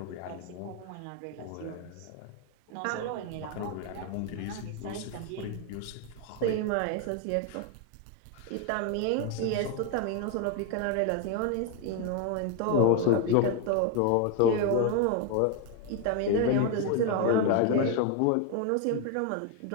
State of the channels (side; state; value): both; different; correlation 0.01